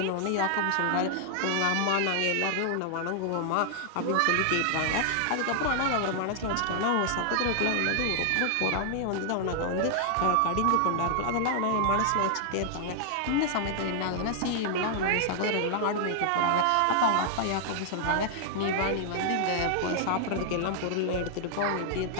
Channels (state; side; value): different; both; correlation 0.00